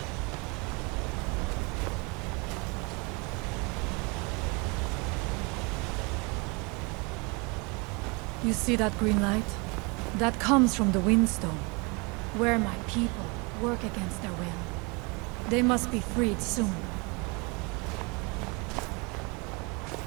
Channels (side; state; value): left; quieter; 29.7 dB